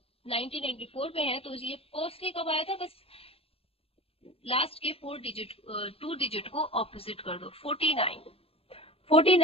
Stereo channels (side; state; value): right; late; 0.28 ms